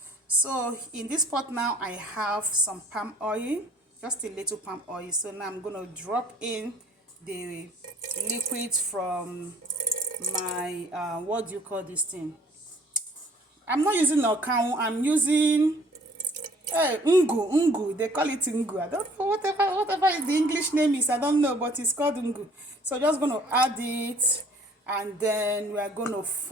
So in this pot now I have some palm oil, just a little palm oil. So now I'm gonna drop in the liquid from my what do you call this thing? I'm not using Okaun, I'm using Ngu. They call it Ngu. I don't know whatever the English name is. I don't know, but it's called Ngu. So just gonna add it, and then we are gonna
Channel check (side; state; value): both; normal; correlation 0.56